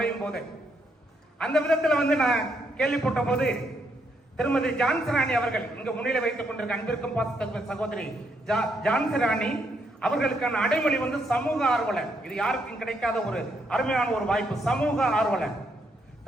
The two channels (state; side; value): normal; both; correlation 0.76